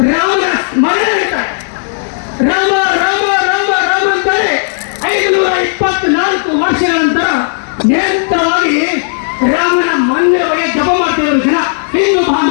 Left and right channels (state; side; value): silent; right; digital silence